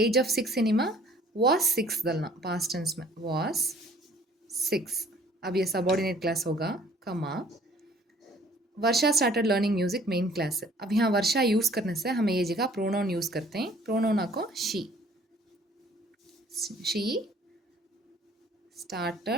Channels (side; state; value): both; normal; correlation 0.56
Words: of 6 cinema was 6 डालना पास्ट टेंस में was 6. अब ये सबऑर्डिनेट क्लास होगा comma. Varsha started learning music main clause. अब यहाँ वर्षा यूज़ करने से हमें ये जगह प्रोनाउन यूज़ करते हैं. प्रोनाउन को शी